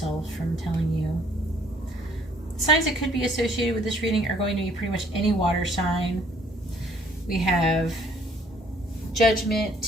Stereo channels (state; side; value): normal; both; correlation 0.61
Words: from telling you. Signs that could be associated with this reading are going to be pretty much any water sign. We have